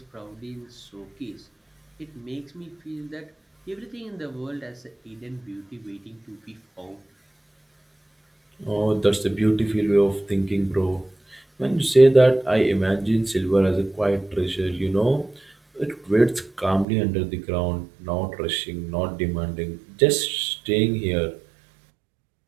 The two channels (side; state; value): left; drops out; at 16.9 s